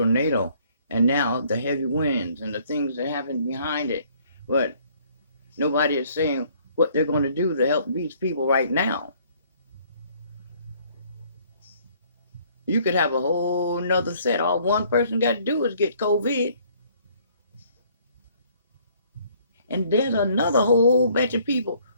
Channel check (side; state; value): both; inverted; correlation -0.61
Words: and now the heavy winds and the things that happen behind it. But nobody is saying what they're going to do to help these people right now. You could have a whole nother set. All one person got to do is get COVID. And there's another whole bunch of people